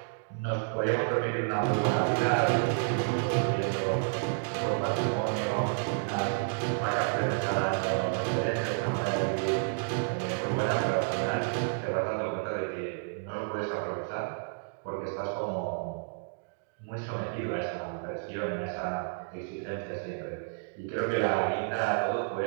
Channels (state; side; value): silent; left; digital silence